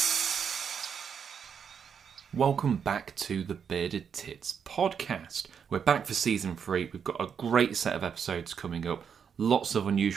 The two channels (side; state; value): left; quieter; 7.2 dB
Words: Welcome back to the Bearded Tits podcast. We're back for season 3. We've got a great set of episodes coming up. Lots of